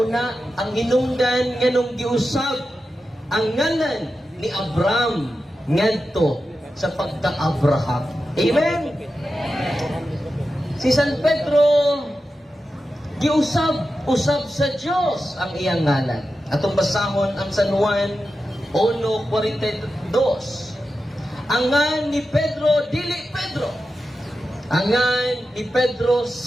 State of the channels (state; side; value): normal; both; correlation 0.91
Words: ang hinungdan nganong giusab ang ngalan ni Abraham ngadto sa pagka-Abraham. Amen. Si San Pedro giusab sa Dios ang iyang ngalan. Atong basahon ang San Juan 1:42. Ang ngalan ni Pedro dili Pedro. Ang ngalan ni Pedro